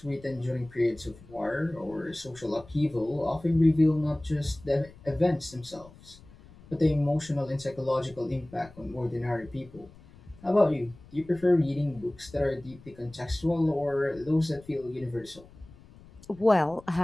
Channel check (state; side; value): noise; left; rumble, 22 dB below the sound